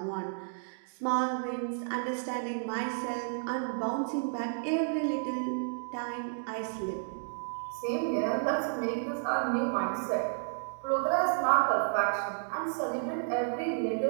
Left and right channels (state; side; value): silent; left; digital silence